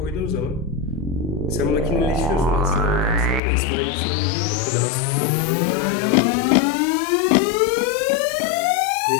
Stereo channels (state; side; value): drops out; right; at 3.4 s